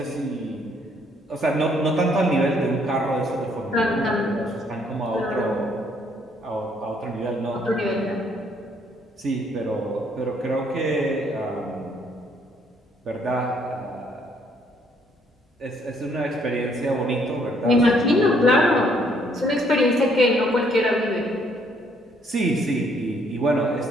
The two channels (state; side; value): normal; both; correlation 0.67